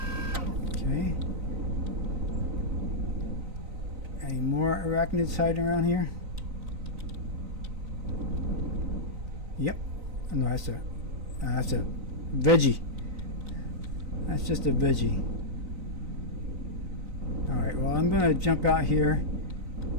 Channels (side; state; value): left; late; 3.9 ms